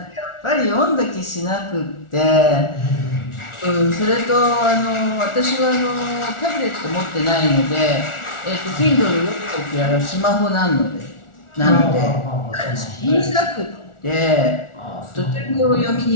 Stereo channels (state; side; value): late; right; 1.4 ms